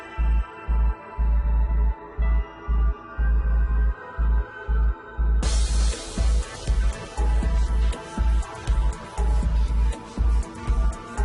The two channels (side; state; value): both; identical; correlation 1.00